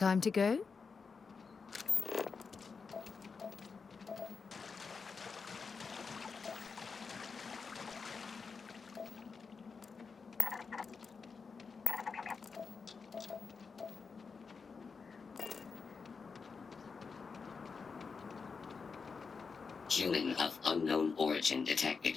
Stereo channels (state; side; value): quieter; right; 5.2 dB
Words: to go? Human of unknown origin